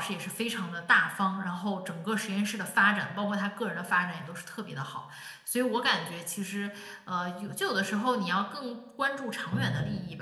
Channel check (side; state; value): both; identical; correlation 1.00